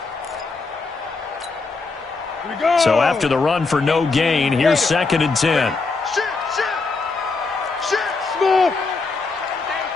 So after the run for no gain, here's 2nd and 10. Smooth.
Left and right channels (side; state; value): right; quieter; 4.1 dB